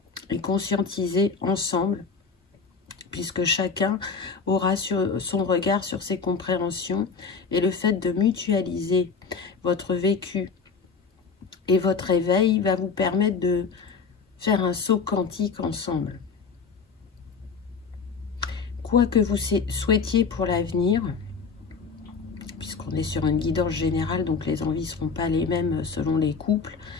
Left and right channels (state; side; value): quieter; right; 5.2 dB